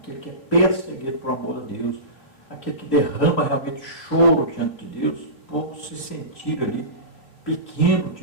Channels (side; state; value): right; late; 3.3 ms